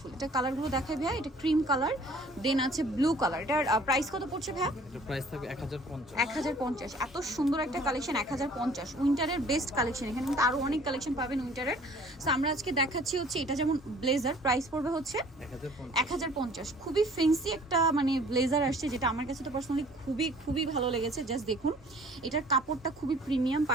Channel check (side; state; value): both; normal; correlation 0.53